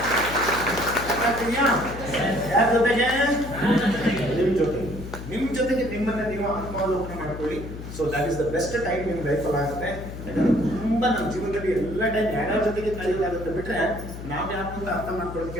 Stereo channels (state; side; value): noise; left; hum, 10 dB below the sound